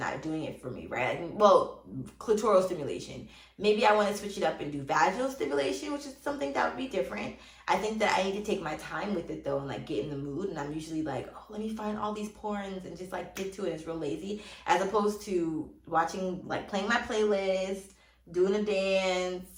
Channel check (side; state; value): both; identical; correlation 1.00